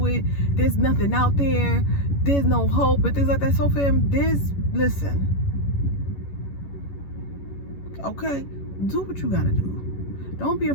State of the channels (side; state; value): right; late; 11 ms